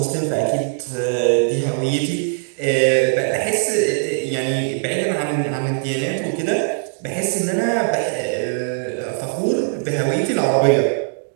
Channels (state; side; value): silent; left; digital silence